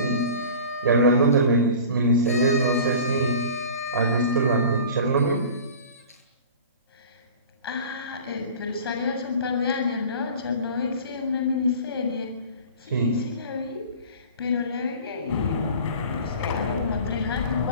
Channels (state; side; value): inverted; both; correlation -0.40